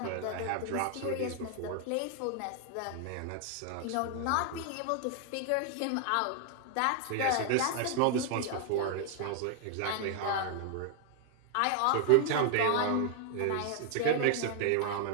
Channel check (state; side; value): different; both; correlation 0.00